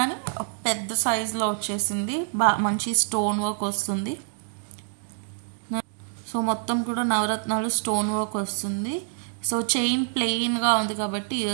పెద్ద సైజులో వచ్చేసింది, మంచి స్టోన్ వర్క్ వస్తుంది. సో మొత్తం కూడా నవరత్నాలు స్టోన్ వర్క్ వస్తుంది. సో చైన్ ప్లెయిన్గా ఉంది కాబట్టి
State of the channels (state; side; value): silent; left; digital silence